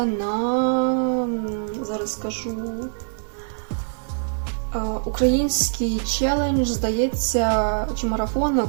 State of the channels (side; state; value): left; silent; 63 dB below the other